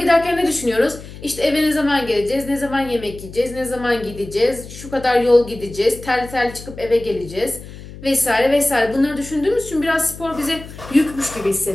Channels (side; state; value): left; noise; hum, 15 dB below the sound